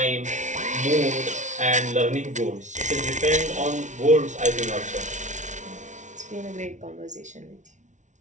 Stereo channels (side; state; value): left; late; 0.36 ms